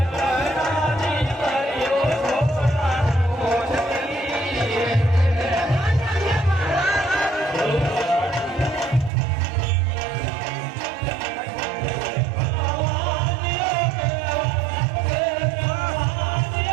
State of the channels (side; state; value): left; drops out; at 9.1 s